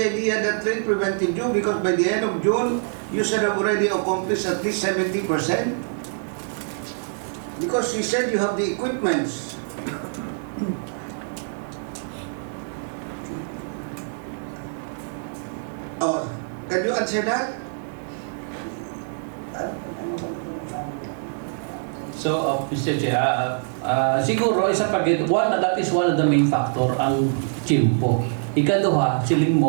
that rain prevented you, because by the end of June, you should have already accomplished at least 70%. Because you said you have the equipments. Oh, can you answer that? So, Mr. Chair, siguro isa pa that is one of the main factor ang chimpo. Ikaduha, siling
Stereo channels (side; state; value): left; silent; 62 dB below the other